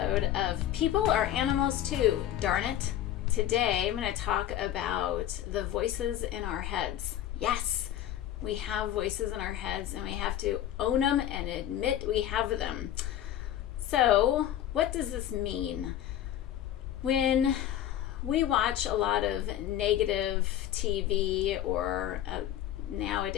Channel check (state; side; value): quieter; right; 11.8 dB